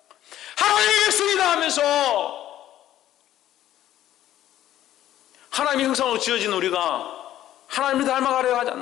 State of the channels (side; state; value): right; quieter; 12.7 dB